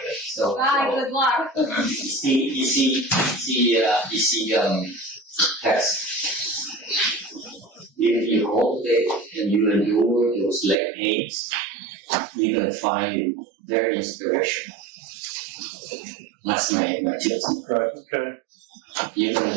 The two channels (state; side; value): drops out; left; at 10.8 s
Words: So, Bye, good luck. you see, text. If you cultivate and you endure those leg pains, you're gonna find very inspirational. That's my tips. Right. Okay. You're gonna